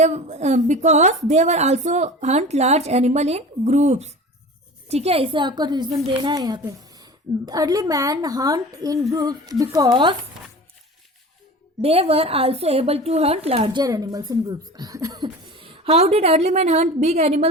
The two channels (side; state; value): both; normal; correlation 0.36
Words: they were also Hunt large animal in groups. ठीक है, इसे आपको रीजन देना है यहाँ पे। Early man hunt in groups because they were also able to hunt larger animals in groups. How did early man hunt big